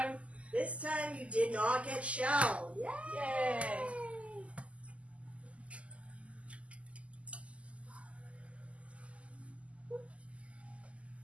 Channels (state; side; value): late; left; 0.063 ms